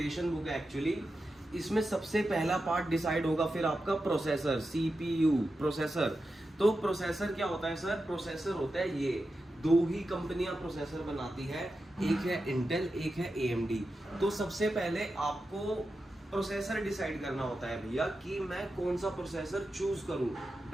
बुक है एक्चुअली। इसमें सबसे पहला पार्ट डिसाइड होगा फिर आपका प्रोसेसर, CPU प्रोसेसर। तो प्रोसेसर क्या होता है सर? प्रोसेसर होता है ये, दो ही कंपनियां प्रोसेसर बनाती है, एक है इंटेल, एक है AMD। तो सबसे पहले आपको प्रोसेसर डिसाइड करना होता है भैया कि मैं कौन सा प्रोसेसर चूज करूं,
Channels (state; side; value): normal; both; correlation 0.90